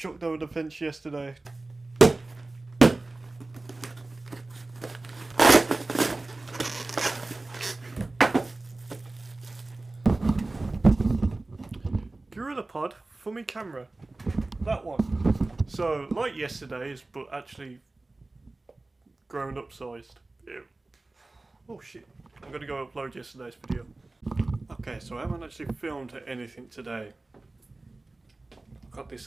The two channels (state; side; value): quieter; left; 3.1 dB